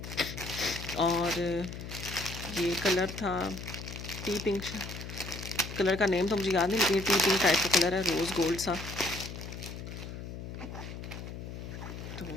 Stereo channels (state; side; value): noise; left; hum, 9 dB below the sound